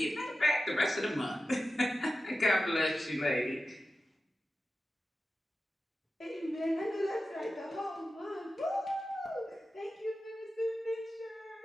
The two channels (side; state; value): both; normal; correlation 0.93